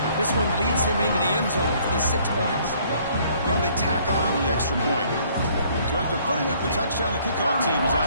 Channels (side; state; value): both; inverted; correlation -0.61